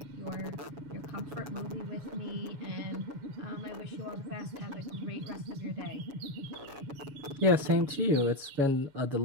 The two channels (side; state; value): left; late; 7.2 ms